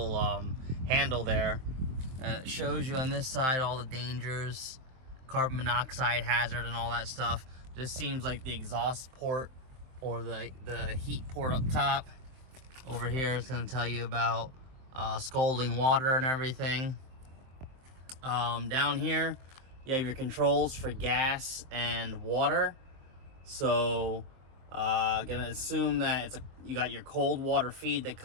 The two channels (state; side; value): late; left; 23 ms